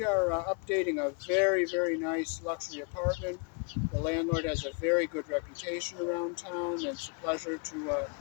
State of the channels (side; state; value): right; quieter; 36.3 dB